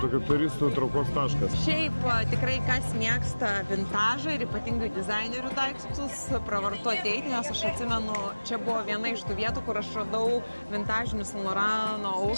tokia turistų traukos taškas. Šiaip tikrai kas mėgsta vintažą ir ypatingai dizainerių daiktus, pravartu ateiti, nes aš atsimenu, čia buvo viena iš tų vietų, kur aš radau vintažinius Saint Laurent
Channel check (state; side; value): inverted; both; correlation -1.00